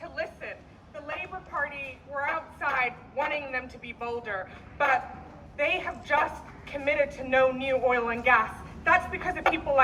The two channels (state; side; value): identical; both; correlation 1.00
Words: listen. The Labour Party, we're outside wanting them to be bolder, but they have just committed to no new oil and gas. That's because of people